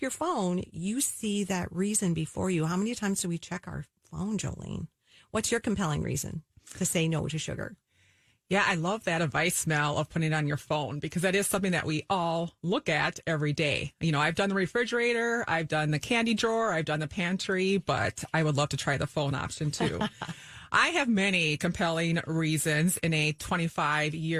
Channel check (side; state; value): both; identical; correlation 1.00